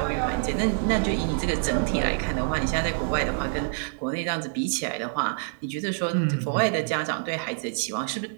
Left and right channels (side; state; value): left; silent; digital silence